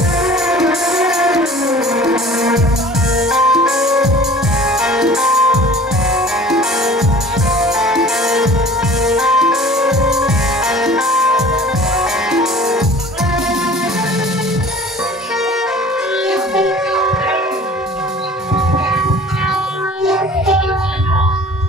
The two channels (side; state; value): both; normal; correlation 0.46